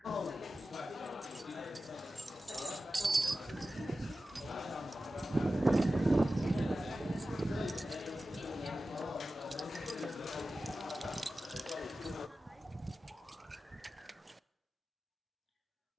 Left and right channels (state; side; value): normal; both; correlation 0.94